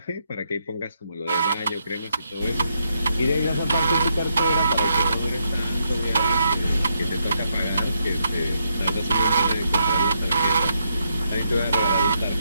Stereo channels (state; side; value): inverted; both; correlation -0.78